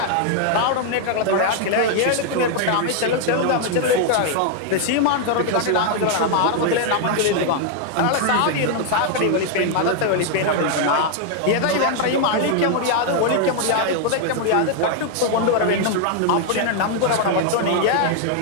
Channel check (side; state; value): both; different; correlation 0.00